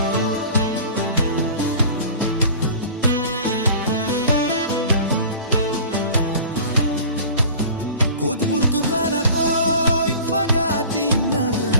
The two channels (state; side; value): inverted; both; correlation -0.42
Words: Koot burtukaana koo hin fagaatin